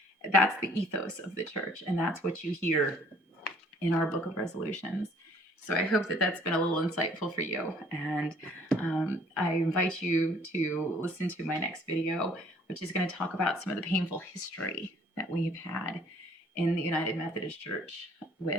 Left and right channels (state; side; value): normal; both; correlation 0.58